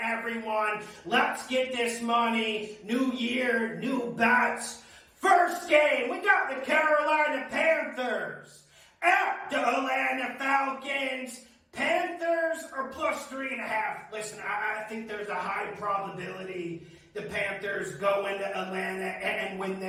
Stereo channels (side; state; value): both; identical; correlation 1.00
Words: everyone. Let's get this money. New year, new bets. First game, we got the Carolina Panthers at the Atlanta Falcons. Panthers are plus 3.5. Listen, I think there's a high probability the Panthers go into Atlanta and win